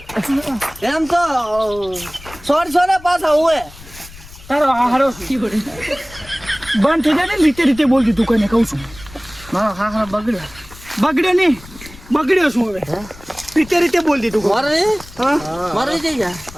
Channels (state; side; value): noise; left; rumble, 19 dB below the sound